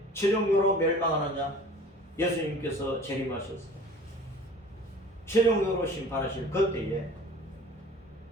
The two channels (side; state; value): both; normal; correlation 0.45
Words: 최종적으로 멸망하느냐? 예수님께서 재림하셨어요. 최종적으로 심판하실 그때에